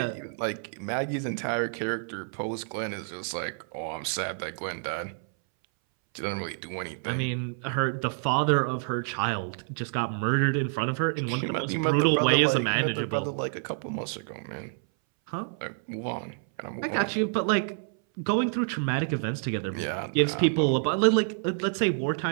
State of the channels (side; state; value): left; silent; 59 dB below the other